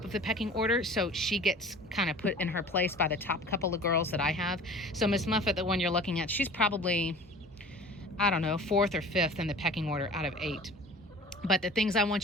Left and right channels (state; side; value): normal; both; correlation 0.43